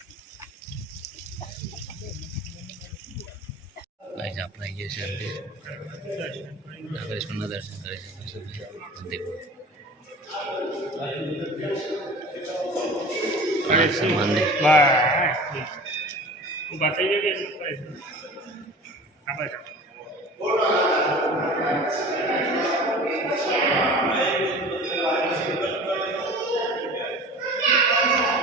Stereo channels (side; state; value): both; normal; correlation 0.40